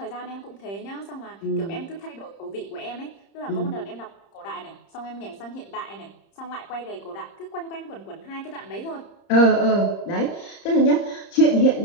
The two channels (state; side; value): late; right; 30 ms